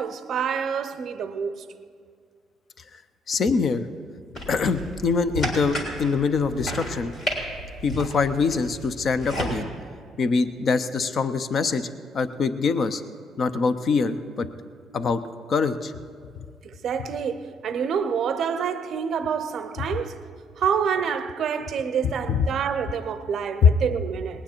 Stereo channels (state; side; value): normal; both; correlation 0.67